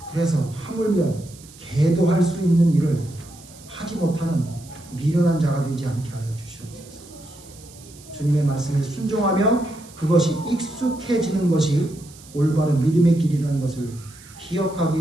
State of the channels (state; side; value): noise; right; hiss, 21 dB below the sound